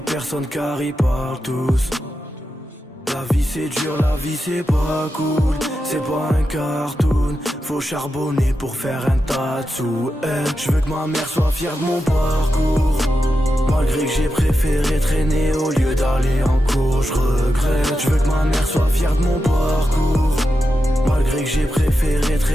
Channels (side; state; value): both; normal; correlation 0.89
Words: personne car ils parlent tous. La vie c'est dur, la vie c'est pas cool. C'est pas un cartoon, faut charbonner pour faire un tas de sous. Je veux que ma mère soit fière de mon parcours. Malgré que j'ai préféré traîner au lieu d'aller en cours, je regrette. Je veux que ma mère soit fière de mon parcours. Malgré que j'ai préféré